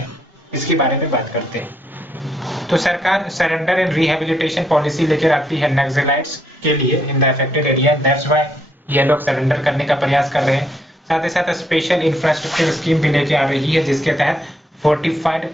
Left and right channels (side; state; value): both; normal; correlation 0.73